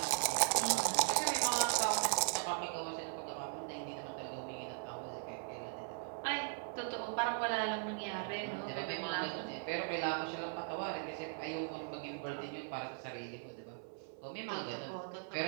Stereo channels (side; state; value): left; silent; 52 dB below the other